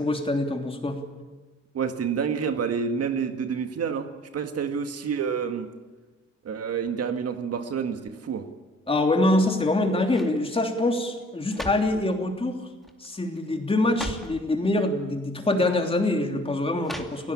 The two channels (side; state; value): both; normal; correlation 0.52